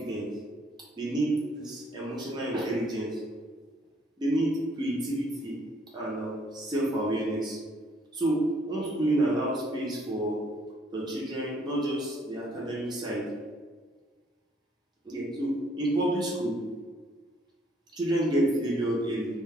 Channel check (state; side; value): normal; both; correlation 0.66